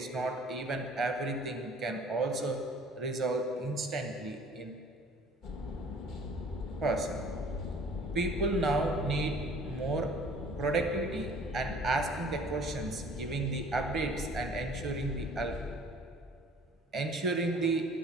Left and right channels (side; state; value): both; normal; correlation 0.51